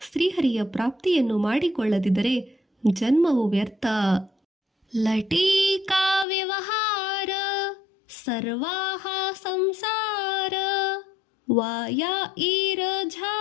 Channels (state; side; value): drops out; right; at 6.2 s